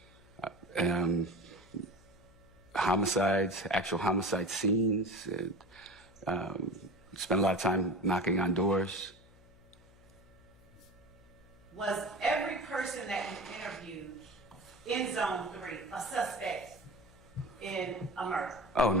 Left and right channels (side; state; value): left; noise; hum, 25 dB below the sound